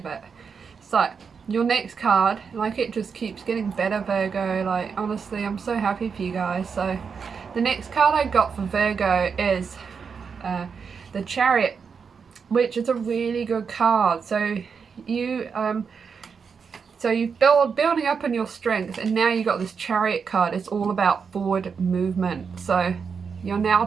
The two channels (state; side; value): quieter; left; 6.0 dB